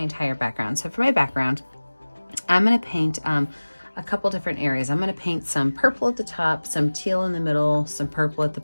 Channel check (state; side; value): inverted; both; correlation -1.00